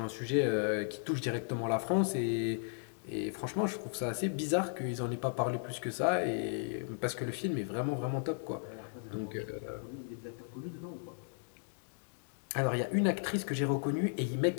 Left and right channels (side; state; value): right; silent; digital silence